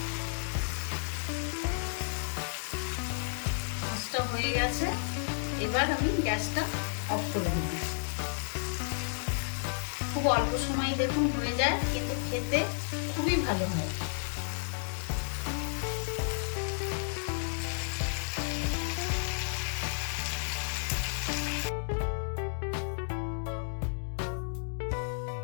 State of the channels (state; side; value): silent; right; digital silence